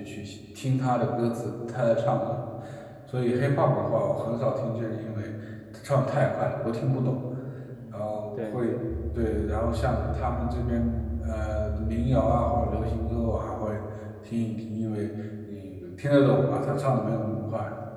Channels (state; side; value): identical; both; correlation 1.00